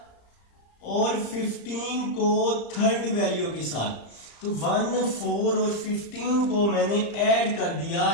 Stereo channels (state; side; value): late; right; 35 ms